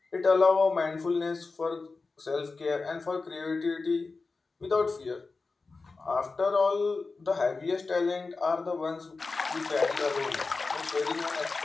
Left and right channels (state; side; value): quieter; right; 4.0 dB